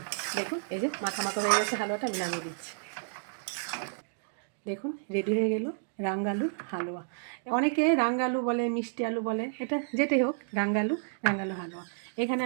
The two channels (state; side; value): silent; left; digital silence